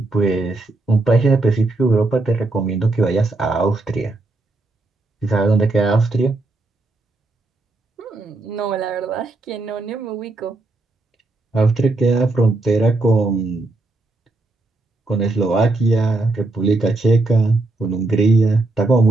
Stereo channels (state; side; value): quieter; left; 3.1 dB